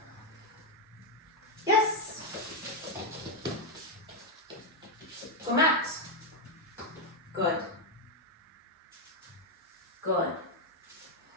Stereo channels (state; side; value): normal; both; correlation 0.03